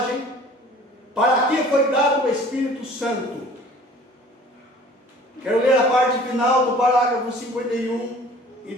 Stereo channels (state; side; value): normal; both; correlation 0.49